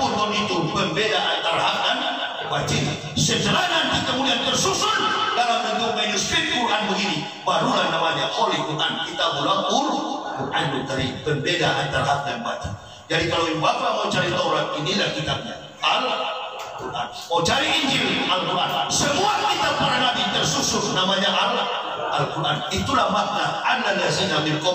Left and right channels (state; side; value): identical; both; correlation 1.00